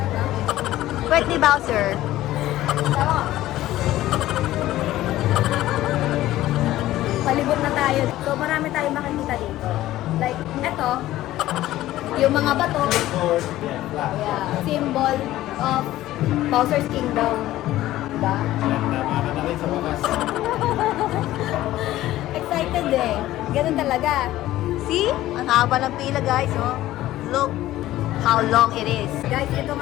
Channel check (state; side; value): quieter; right; 15.0 dB